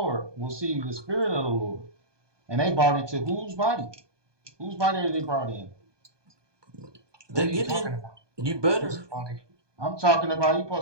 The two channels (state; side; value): late; left; 1.2 ms